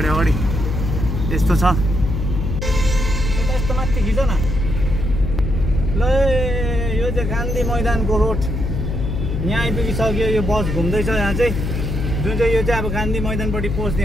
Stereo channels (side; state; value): left; noise; hum, 2 dB below the sound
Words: अगाडि यस्तो छ। यस्तो माथि खिच न ल। यो चाहिँ गान्धी मैदानको रोड यहाँ आइपुगिसक्यो। यो बस घुम्दैछ यहाँ चाहिँ, जुन चाहिँ यो चाहिँ अब गान्धी मैदानपट्टि पस्ने